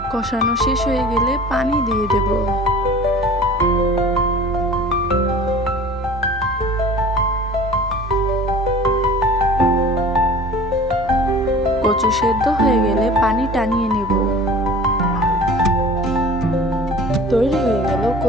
কষানো শেষ হয়ে গেলে পানি দিয়ে দেব। কচু সেদ্ধ হয়ে গেলে পানি টানিয়ে নেব। তৈরি হয়ে গেল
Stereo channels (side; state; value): both; normal; correlation 0.43